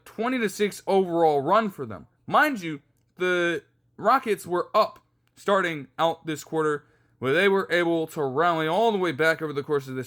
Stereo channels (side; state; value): both; identical; correlation 1.00